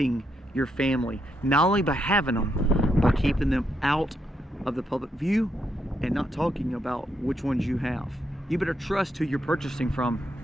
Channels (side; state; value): both; normal; correlation 0.79